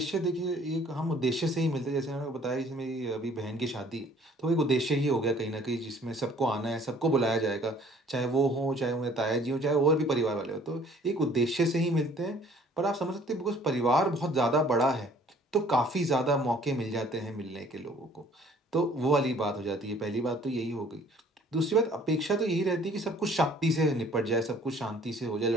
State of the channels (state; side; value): normal; both; correlation 0.55